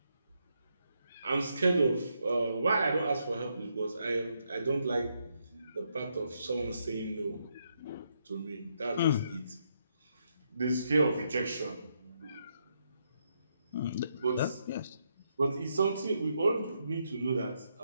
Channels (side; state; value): both; inverted; correlation -0.79